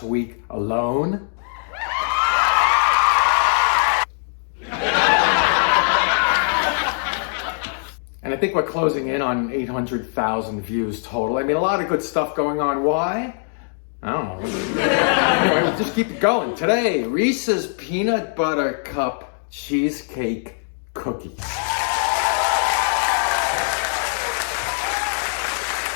week alone. And I think we're closing in on 800,000 views total. I mean, a lot of good stuff going on. Why? I don't know. Anyway, we'll just keep it going. Today, Reese's Peanut Butter Cup Cheesecake Cookies.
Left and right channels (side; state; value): right; silent; digital silence